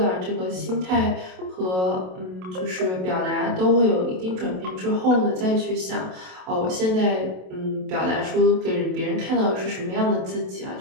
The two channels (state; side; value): late; left; 27 ms